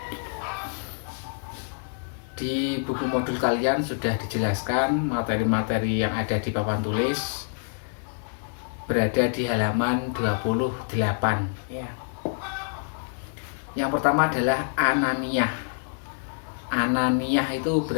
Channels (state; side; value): silent; right; 60 dB below the other